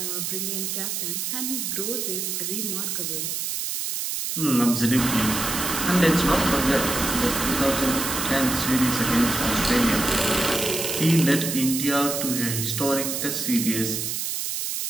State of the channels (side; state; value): right; noise; hiss, 2 dB below the sound